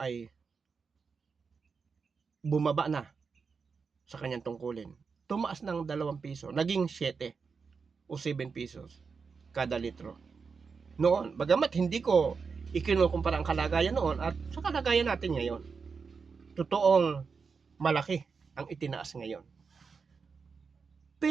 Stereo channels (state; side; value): quieter; left; 5.3 dB